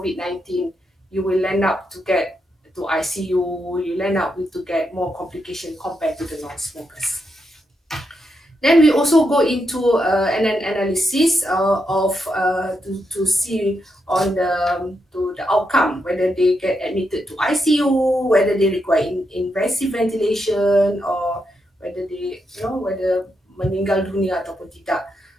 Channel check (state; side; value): normal; both; correlation 0.83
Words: you will end up to get to ICU, you'll end up with to get more complication compared to the non-smokers. Then we also go into an analysis to see on the outcome, whether they get admitted to ICU, whether they require invasive ventilation, or whether they whether meninggal dunia ataupun tidak.